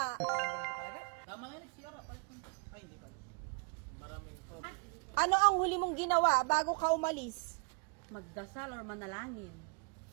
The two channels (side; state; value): left; quieter; 34.0 dB